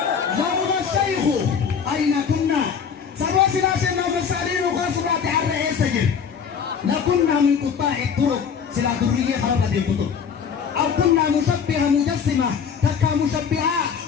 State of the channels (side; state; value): right; quieter; 6.8 dB